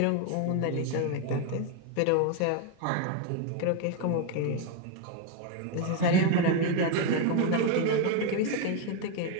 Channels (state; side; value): different; both; correlation 0.01